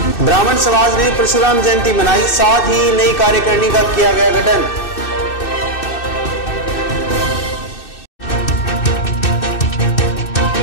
ब्राह्मण समाज ने परशुराम जयंती मनाई, साथ ही नई कार्यकारिणी का किया गया गठन।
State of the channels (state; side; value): late; right; 2.6 ms